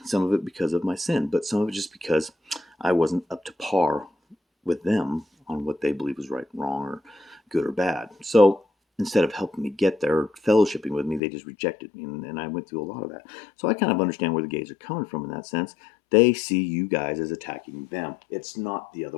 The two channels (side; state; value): right; drops out; at 11.2 s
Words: Some of it because of my sin, but some of it just because I wasn't up to par with them on what they believe was right, wrong, or good or bad. So instead of helping me get there, or fellowshipping with me, they just rejected me, and I went through a lot of that. So I kind of understand where the gays are coming from in that sense. They see you guys as attacking them. It's not the other